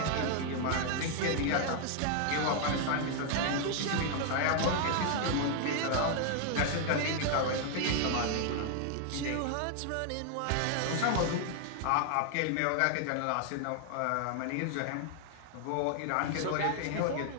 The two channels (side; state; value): both; different; correlation 0.00